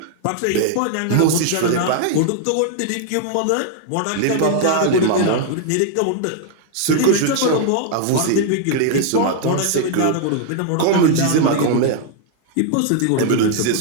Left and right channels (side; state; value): both; different; correlation 0.00